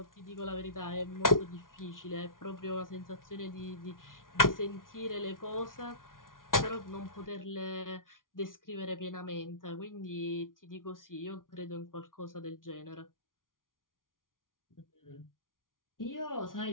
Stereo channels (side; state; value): right; late; 0.89 ms